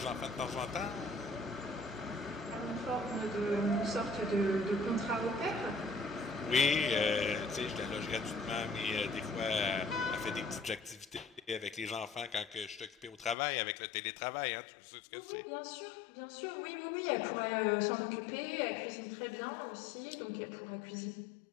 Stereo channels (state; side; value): drops out; right; at 13.4 s